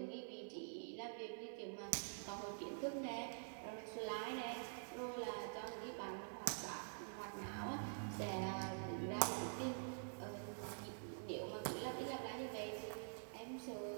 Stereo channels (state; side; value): silent; left; digital silence